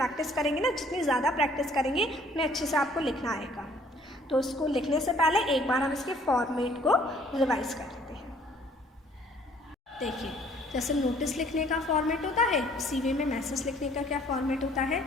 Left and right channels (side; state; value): both; normal; correlation 0.59